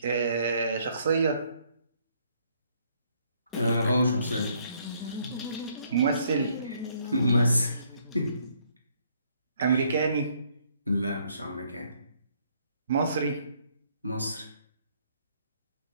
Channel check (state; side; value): inverted; both; correlation -0.67